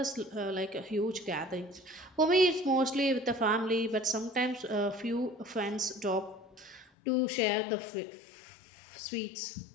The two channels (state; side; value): drops out; right; at 6.9 s